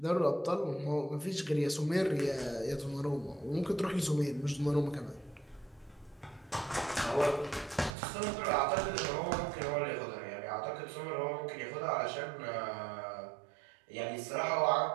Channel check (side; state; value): left; drops out; at 8.0 s